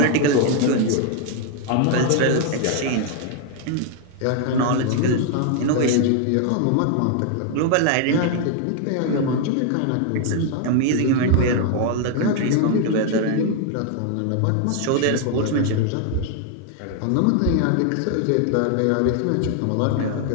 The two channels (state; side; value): different; both; correlation 0.00